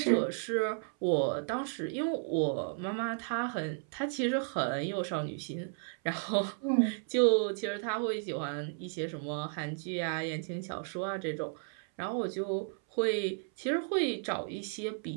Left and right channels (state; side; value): silent; left; 55 dB below the other